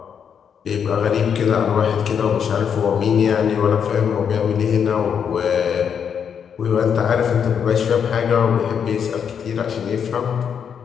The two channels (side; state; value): right; quieter; 7.5 dB